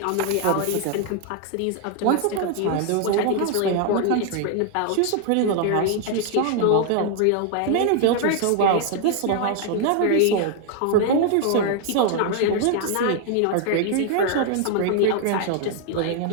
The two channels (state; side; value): different; both; correlation 0.00